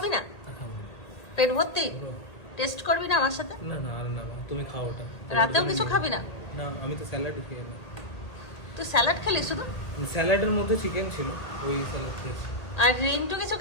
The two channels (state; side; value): late; right; 1.8 ms